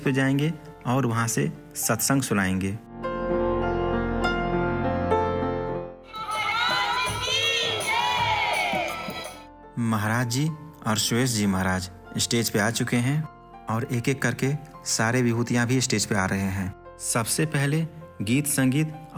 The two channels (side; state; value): both; identical; correlation 1.00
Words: पर जाएंगे और वहां से सत्संग सुनाएंगे। महाराज जी और सुरेश जी महाराज स्टेज पे आ चुके हैं और एक एक करके सारे विभूतियां भी स्टेज पे आ रहे हैं। सबसे पहले गीत संगीत